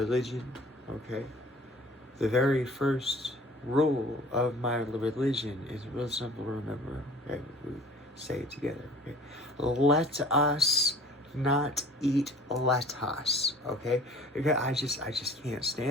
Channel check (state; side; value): normal; both; correlation 0.48